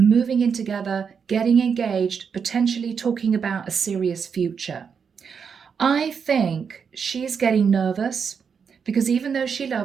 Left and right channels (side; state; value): left; quieter; 6.5 dB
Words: in together, getting engaged, potentially talking about a serious future. I think she's getting nervous because even though she